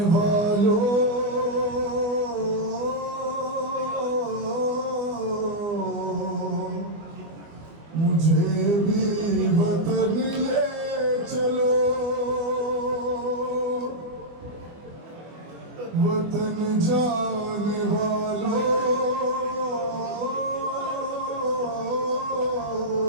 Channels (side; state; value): left; late; 24 ms